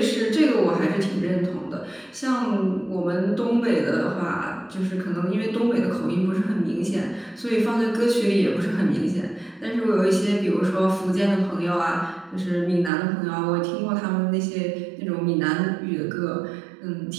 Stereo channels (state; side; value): drops out; left; at 12.9 s